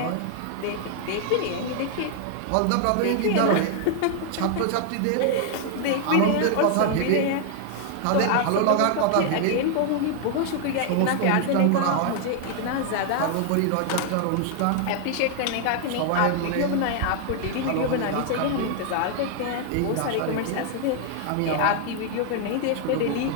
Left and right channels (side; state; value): both; different; correlation 0.00